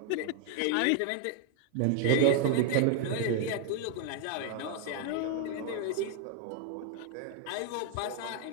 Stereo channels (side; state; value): both; different; correlation 0.00